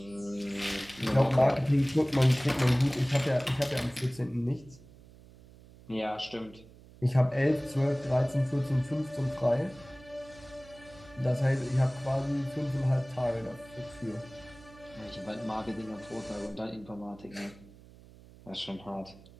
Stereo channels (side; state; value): right; noise; hum, 22 dB below the sound